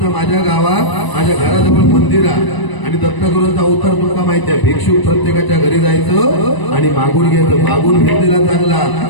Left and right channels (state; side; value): late; right; 1.0 ms